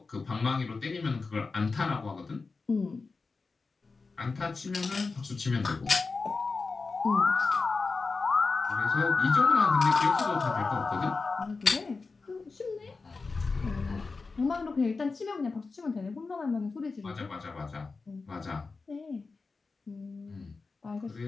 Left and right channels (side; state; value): right; quieter; 4.2 dB